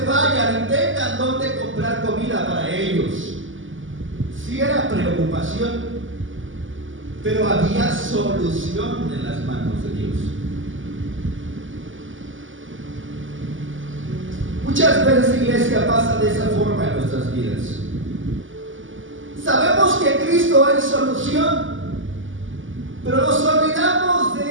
vayan y tengan dónde comprar comida para ellos. Sí era preocupación, pero había solución en las manos de Dios. Muchas veces, iglesia, pasa de esa forma en nuestras vidas. Sabemos que Cristo es solución, pero nos olvidamos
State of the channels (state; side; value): late; left; 0.57 ms